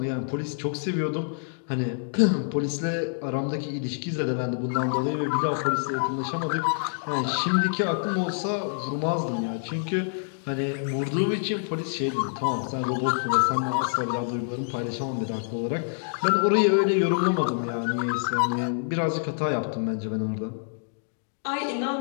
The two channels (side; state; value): right; silent; digital silence